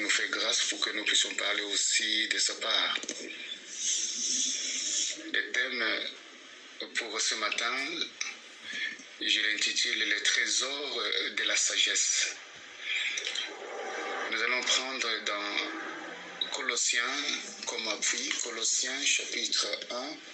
fait grâce pour que nous puissions parler aussi de sa part. Le thème pour ce matin, je l'intitule « Les trésors de la sagesse ». Nous allons prendre dans Colossiens comme appui, Colossiens chapitre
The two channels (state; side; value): identical; both; correlation 1.00